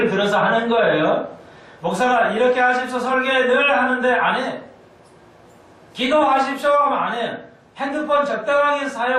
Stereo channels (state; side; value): identical; both; correlation 1.00